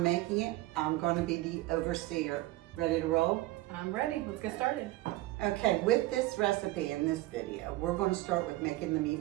making it. I'm going to be the overseer. Ready to roll? I'm ready. Let's get started. Okay, with this recipe in this video, we're going to start with making the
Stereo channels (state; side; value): quieter; left; 18.3 dB